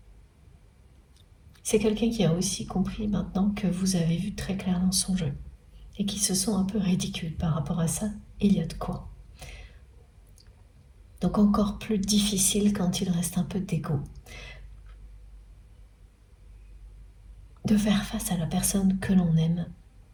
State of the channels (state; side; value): identical; both; correlation 1.00